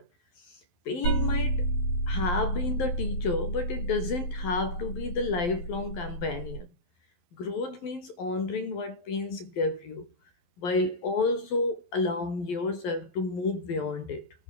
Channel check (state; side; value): late; right; 11 ms